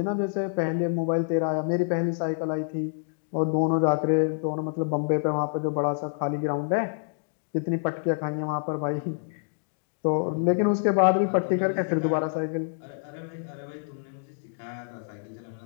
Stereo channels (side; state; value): right; silent; digital silence